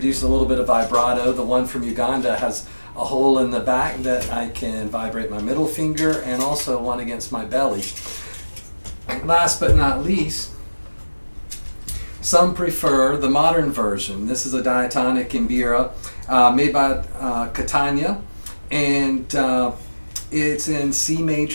a little bit of vibrato. The one from Uganda has a hole in the back that I can vibrate my middle finger, and also one against my belly. Last but not least, some prefer the modern version. This is a diatonic Mbira made by Catania, and It's in C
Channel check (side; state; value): both; inverted; correlation -1.00